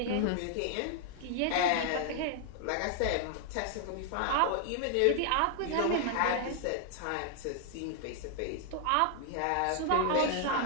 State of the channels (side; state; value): both; different; correlation 0.00